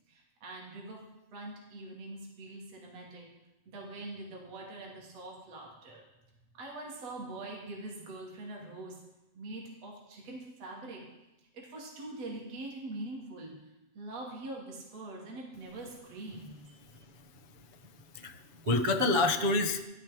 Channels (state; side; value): late; left; 7.6 ms